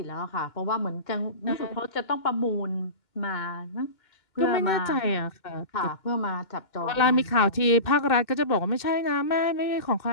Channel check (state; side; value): late; right; 2.2 ms